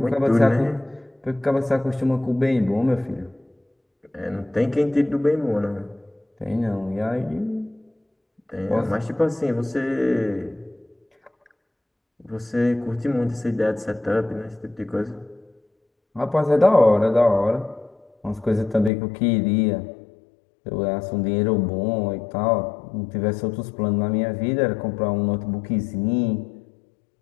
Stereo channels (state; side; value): drops out; right; at 18.9 s